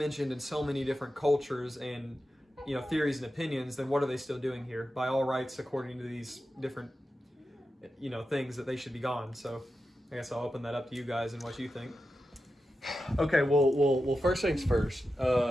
in so many different cultures and theories and opinions, then what are they still doing here? By all rights, according to these different things, that they should be gone. So I guess I'll open that up to you guys and what you think. Okay, well, first things first.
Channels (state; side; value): normal; both; correlation 0.91